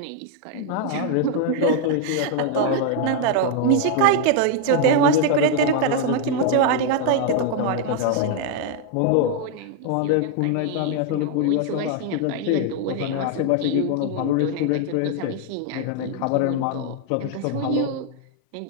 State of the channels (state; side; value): different; both; correlation 0.00